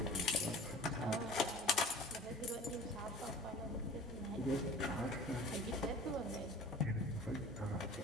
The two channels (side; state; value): both; normal; correlation 0.41